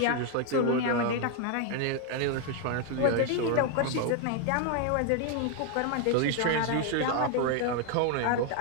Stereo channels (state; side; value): different; both; correlation 0.00